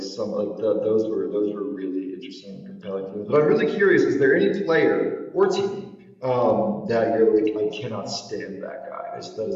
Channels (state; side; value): identical; both; correlation 1.00